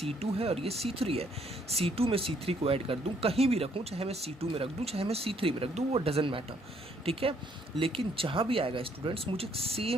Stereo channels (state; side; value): normal; both; correlation 0.67